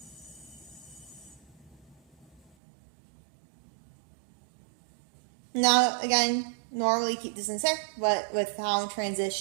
Now, again, normally keep this in the center, but with how I'm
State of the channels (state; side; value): drops out; left; at 2.4 s